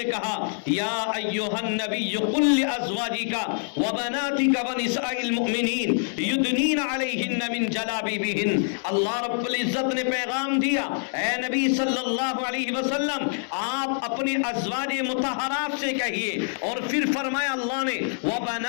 کہا یا ایھا النبی قل لازواجک وبناتک ونساء المؤمنین یدنین علیہن من جلابیبہن۔ اللہ رب العزت نے پیغام دیا، اے نبی صلی اللہ علیہ وسلم آپ اپنی ازواج مطہرات سے کہیے، اور پھر فرمایا اللہ نے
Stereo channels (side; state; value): right; silent; digital silence